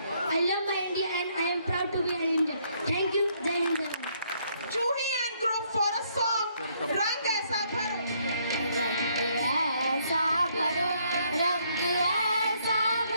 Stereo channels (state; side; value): inverted; both; correlation -0.70